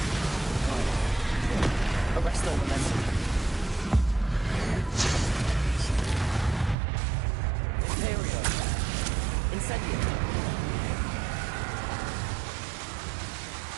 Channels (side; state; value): left; drops out; at 6.8 s